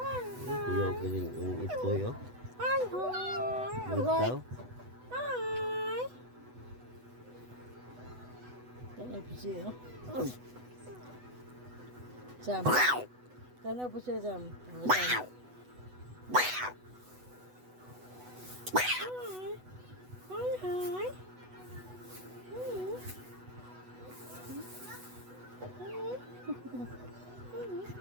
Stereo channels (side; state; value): left; late; 8.1 ms